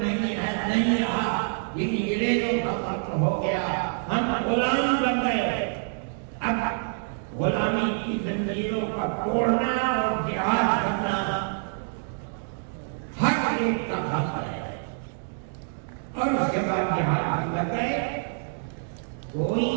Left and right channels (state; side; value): silent; left; digital silence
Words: नहीं है, नहीं रहा। ये अंग्रेजों का मुल्क हो गया, हम गुलाम बन गए। अब गुलामी की जंजीरों का तोड़ना और जिहाद करना हर एक का हक है। और उसके बाद जिहाद लग गए। कोई